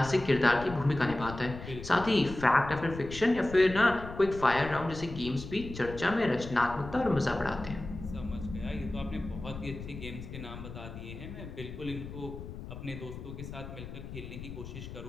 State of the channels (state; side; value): noise; left; rumble, 11 dB below the sound